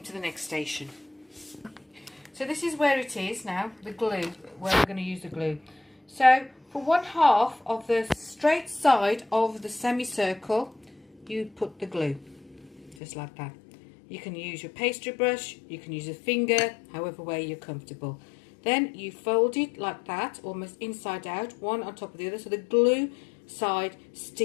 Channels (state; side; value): drops out; right; at 13.0 s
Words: to the next station. So this is where it is now, the glue, where we're going to use the glue. So for 1/2 of the straight side of the semicircle, you put the glue, just like that. You can use your pastry brush, you can use a finger, however way you're comfortable. Then you fold it like that, almost inside out, one on top of the other, so the glue side